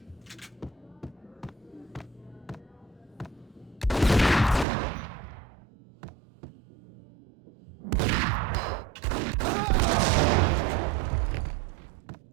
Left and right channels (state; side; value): drops out; left; at 4.7 s